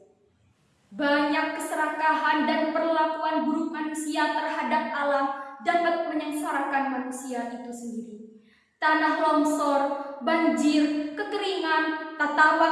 Banyak keserakahan dan perlakuan buruk manusia terhadap alam dapat menyengsarakan manusia itu sendiri. Tanah longsor, banjir, kekeringan, tata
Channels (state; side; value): identical; both; correlation 1.00